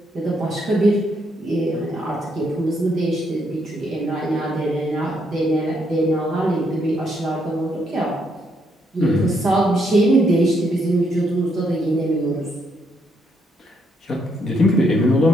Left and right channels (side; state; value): both; normal; correlation 0.75